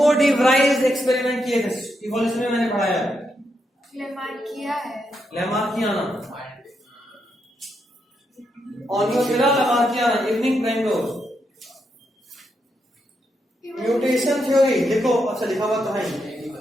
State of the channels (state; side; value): normal; both; correlation 0.82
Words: डी व्राइज एक्सपेरिमेंट किए थे, इवोल्यूशन में मैंने पढ़ाया है। Lamarckiana, Oenothera lamarckiana, evening primrose. Mutation theory देखो, अच्छा लिखा हुआ तो है।